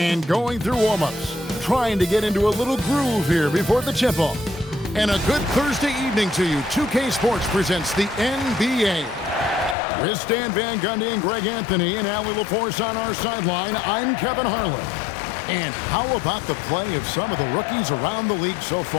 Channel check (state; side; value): drops out; right; at 9.8 s